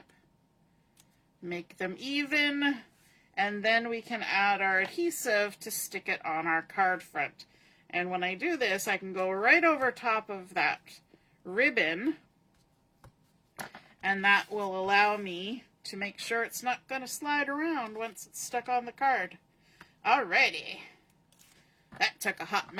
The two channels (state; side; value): identical; both; correlation 1.00